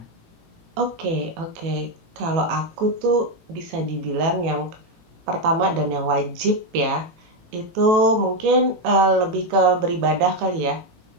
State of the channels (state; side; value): late; left; 18 ms